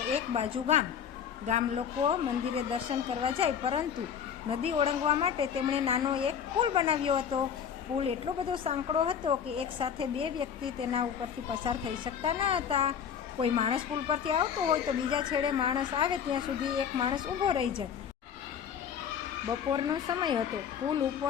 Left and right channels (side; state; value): right; quieter; 8.0 dB